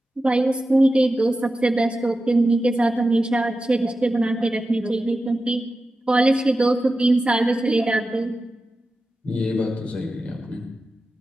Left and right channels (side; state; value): both; normal; correlation 0.93